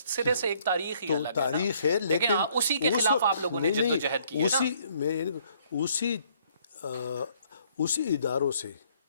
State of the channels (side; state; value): both; inverted; correlation -0.64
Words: سے ایک تاریخ ہی تو الگ ہے نا۔ تاریخ ہے، لیکن ہاں اسی کے خلاف آپ لوگوں نے جد و جہد کی ہے نا۔ اسی اداروں سے